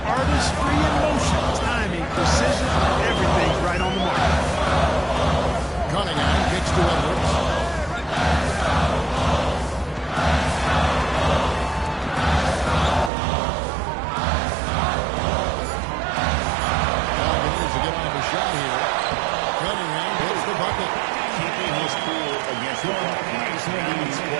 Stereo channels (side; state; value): left; drops out; at 13.1 s